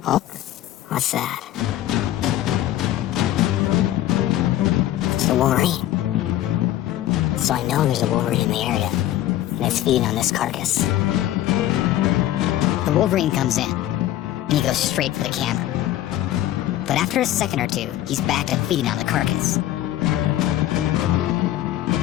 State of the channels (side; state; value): right; quieter; 13.6 dB